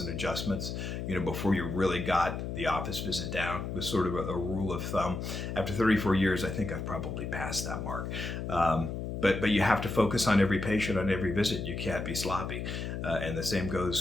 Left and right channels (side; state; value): left; noise; hum, 5 dB below the sound